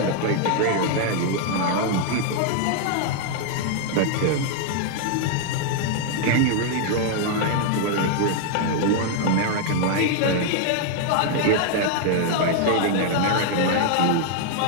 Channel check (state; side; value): different; both; correlation 0.00